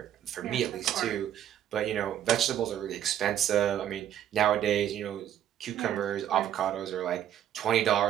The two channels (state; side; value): quieter; left; 10.8 dB